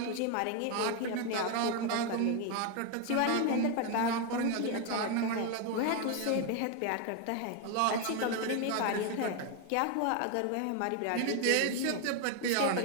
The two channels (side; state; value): both; different; correlation 0.01